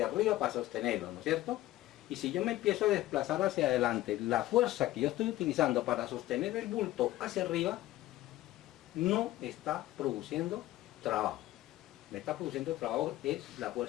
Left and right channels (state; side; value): quieter; right; 15.9 dB